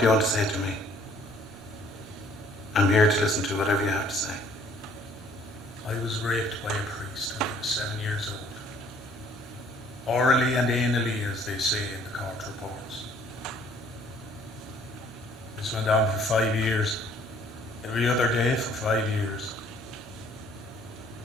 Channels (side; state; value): both; normal; correlation 0.59